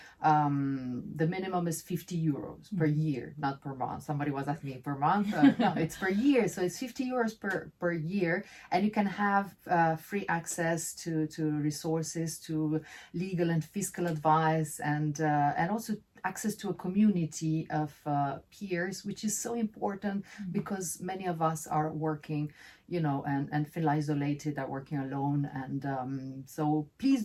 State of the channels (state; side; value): identical; both; correlation 1.00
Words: minimum is 50 euros per year, not per month. Somebody was asking me per month. No, it's per year. So it's 50 euros per year, and you can have free access to resources, to legal and fiscal advice, and also access to a community of peers, which is so important because many of us are working, and feel isolated, are working alone. And so please